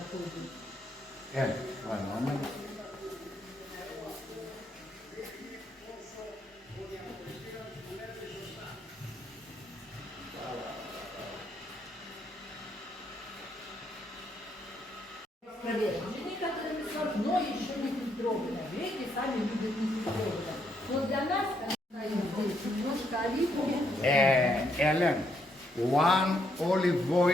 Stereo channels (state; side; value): normal; both; correlation 0.75